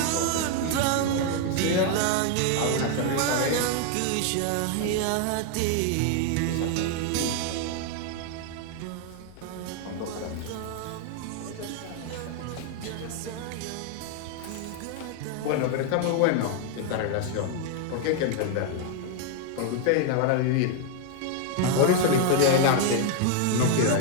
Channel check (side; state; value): both; different; correlation 0.01